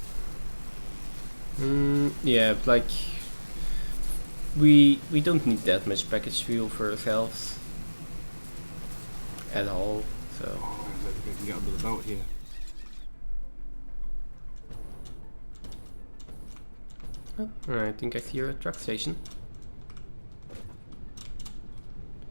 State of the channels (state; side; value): inverted; both; correlation -1.00